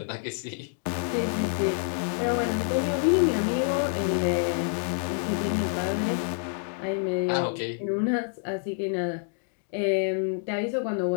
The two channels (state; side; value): silent; right; 60 dB below the other